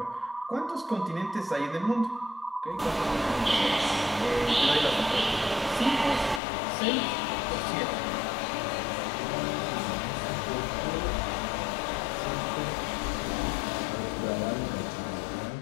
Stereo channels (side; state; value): right; drops out; at 6.4 s